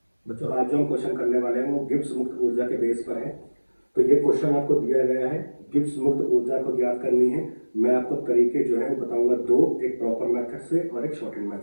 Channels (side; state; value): both; inverted; correlation -1.00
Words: बच्चों आज जो हम क्वेश्चन करने वाले हैं वो गिब्स मुक्त ऊर्जा के बेस पर है। तो ये क्वेश्चन आपको दिया गया है, गिब्स मुक्त ऊर्जा को ज्ञात करनी है। मैं आपको तरीके जो है वो बताऊंगा दो, एक प्रॉपर मेथड से और एक शॉर्टेड